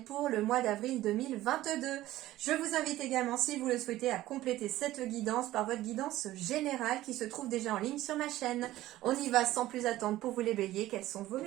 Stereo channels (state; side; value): quieter; left; 15.5 dB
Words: pour le mois d'avril 2022. Je vous invite également, si vous le souhaitez, à compléter cette guidance par votre guidance générale qui se trouve déjà en ligne sur ma chaîne. On y va sans plus attendre pour vous les béliers. Quels sont vos